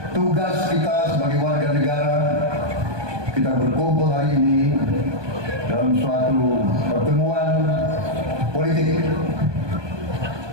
tugas kita sebagai warga negara. Kita berkumpul hari ini dalam suatu pertemuan politik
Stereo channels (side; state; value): left; late; 1.2 ms